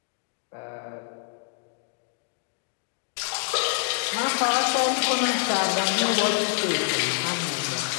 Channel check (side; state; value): right; silent; digital silence